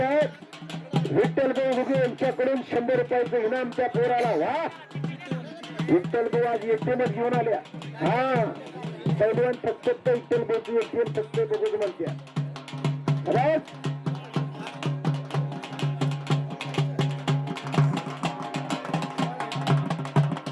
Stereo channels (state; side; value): identical; both; correlation 1.00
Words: आहेत विठ्ठल भाऊ घुगे यांच्याकडून 100 रुपयाचं इनाम त्या पोराला. वा विठ्ठल भाऊ आज एटीएमच घेऊन आल्या. हा पैलवान फक्त विठ्ठल भाऊची एटीएम फक्त बघू म्हणत्या.